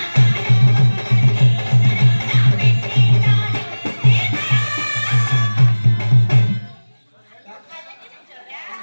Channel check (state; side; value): inverted; both; correlation -1.00